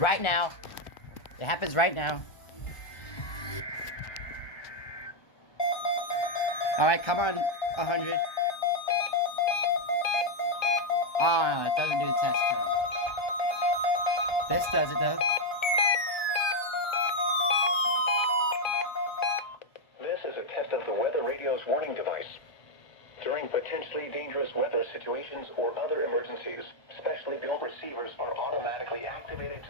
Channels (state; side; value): late; right; 1.2 ms